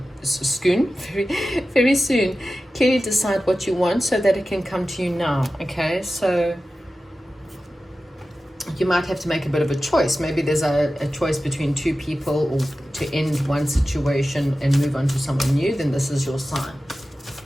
very soon. Clearly decide what you want so that it can come to you now, okay? So you might have to make a bit of a choice. Maybe there's a choice between two people, or to end one situation and move on to someone new, then this is your sign.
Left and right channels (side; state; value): both; normal; correlation 0.94